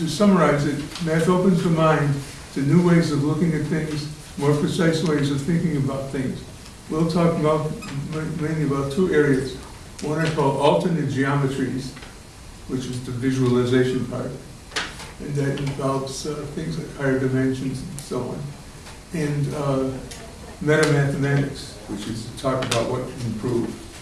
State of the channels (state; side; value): identical; both; correlation 1.00